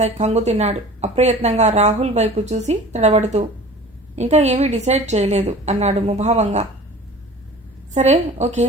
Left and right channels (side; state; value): both; normal; correlation 0.42